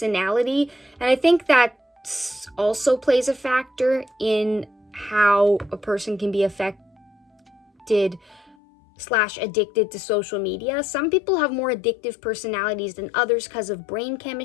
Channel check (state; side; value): drops out; right; at 8.6 s